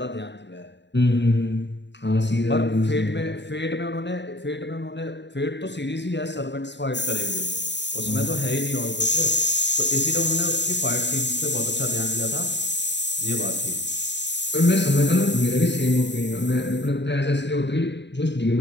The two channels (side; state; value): right; late; 0.52 ms